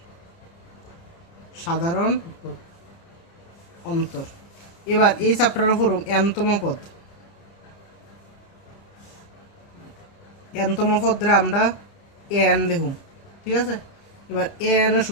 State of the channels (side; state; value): right; late; 30 ms